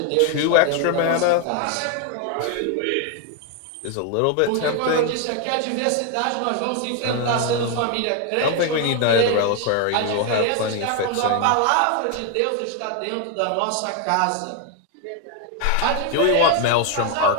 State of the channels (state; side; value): different; both; correlation 0.01